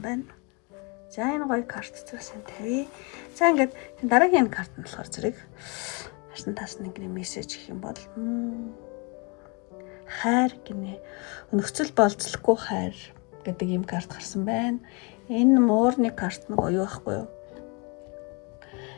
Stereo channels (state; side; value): quieter; right; 31.5 dB